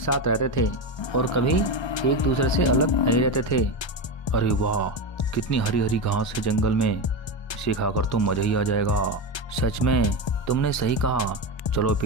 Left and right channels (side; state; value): right; late; 1.2 ms